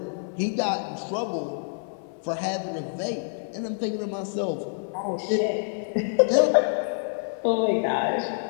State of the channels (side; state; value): right; silent; digital silence